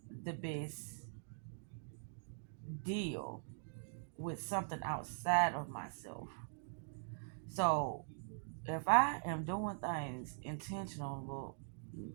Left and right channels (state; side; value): silent; left; digital silence